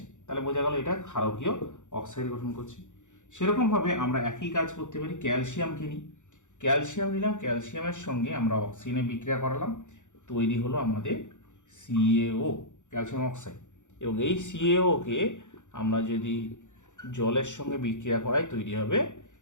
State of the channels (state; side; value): late; right; 0.85 ms